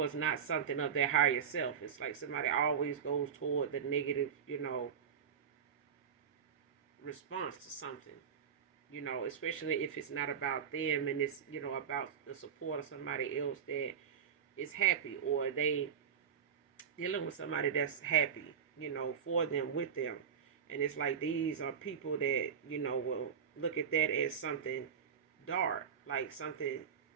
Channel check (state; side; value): quieter; left; 7.4 dB